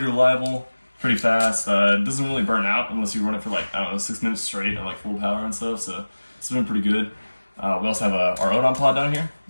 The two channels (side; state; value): both; inverted; correlation -1.00